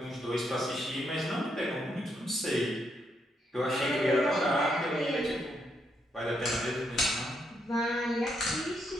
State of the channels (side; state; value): both; normal; correlation 0.77